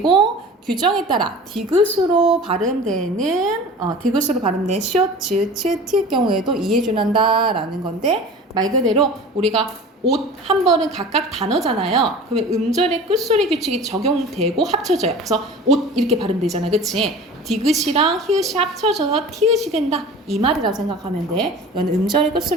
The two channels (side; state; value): both; normal; correlation 0.39